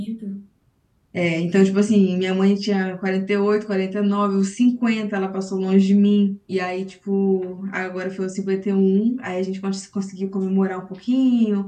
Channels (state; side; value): identical; both; correlation 1.00